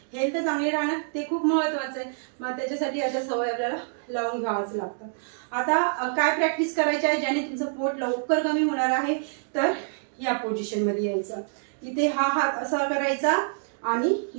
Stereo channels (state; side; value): silent; left; digital silence